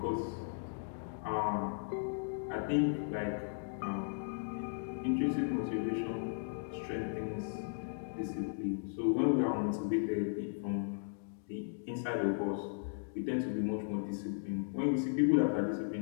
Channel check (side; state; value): right; silent; digital silence